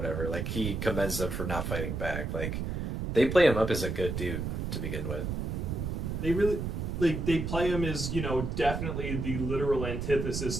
Like he commends them for not fighting back. Like they play him up as a good dude to begin with. They really. Like, they play him as, you know, definitely the literal antithesis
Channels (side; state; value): right; noise; rumble, 3 dB below the sound